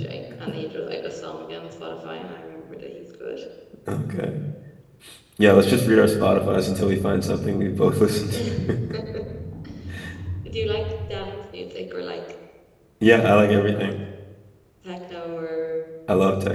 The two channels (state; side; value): identical; both; correlation 1.00